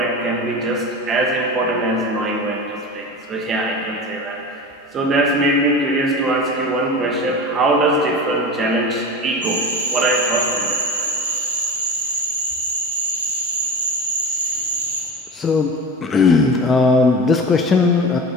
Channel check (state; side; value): normal; both; correlation 0.30